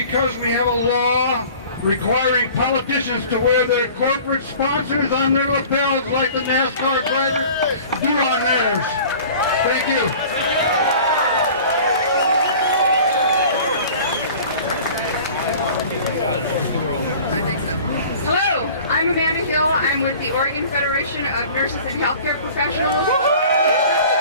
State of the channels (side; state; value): both; inverted; correlation -0.45